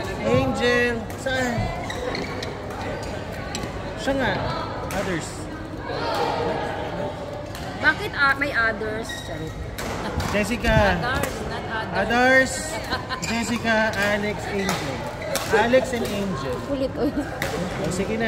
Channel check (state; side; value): identical; both; correlation 1.00